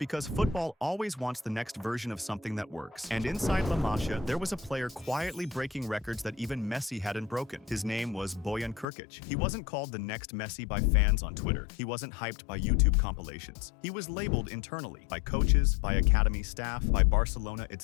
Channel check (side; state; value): right; drops out; at 8.8 s